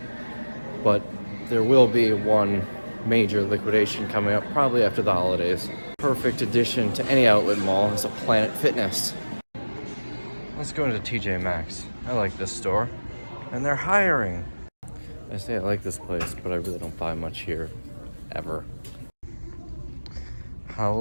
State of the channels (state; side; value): inverted; both; correlation -1.00